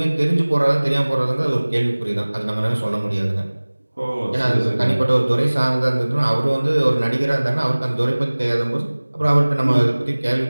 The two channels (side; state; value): both; inverted; correlation -1.00